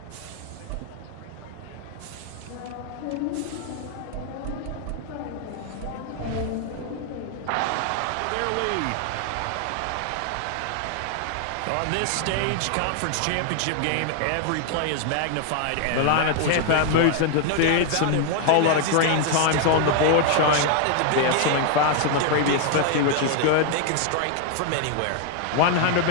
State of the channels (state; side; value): different; both; correlation 0.00